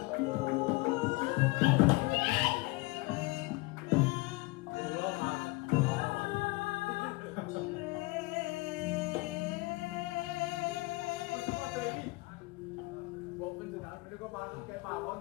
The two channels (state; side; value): quieter; right; 23.9 dB